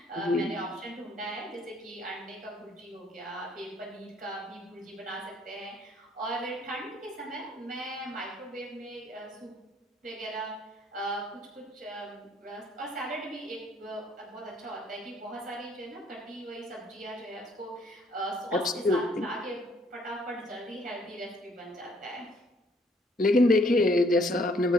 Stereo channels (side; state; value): both; normal; correlation 0.64